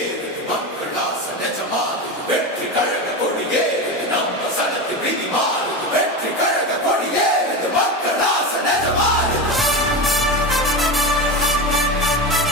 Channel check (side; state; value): both; normal; correlation 0.21